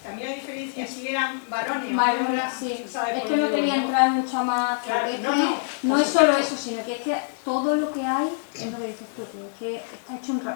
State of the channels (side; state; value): right; silent; digital silence